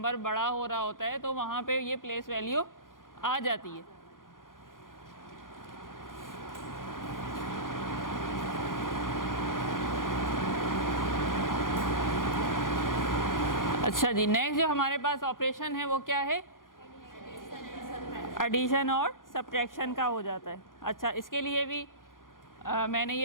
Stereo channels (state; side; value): late; right; 0.90 ms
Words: बड़ा हो रहा होता है, तो वहाँ पे ये प्लेस वैल्यू आ जाती है। अच्छा जी, नेक्स्ट जो हमारे पास ऑपरेशन है वो क्या है, एडिशन और सब्ट्रैक्शन का हो जाता है। अच्छा, इसके लिए भी मैंने